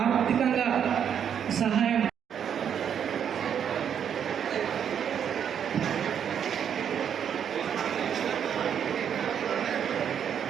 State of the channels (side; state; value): left; quieter; 8.4 dB